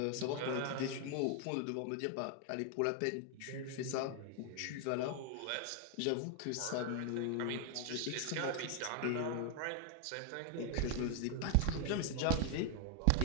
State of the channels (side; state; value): both; different; correlation 0.00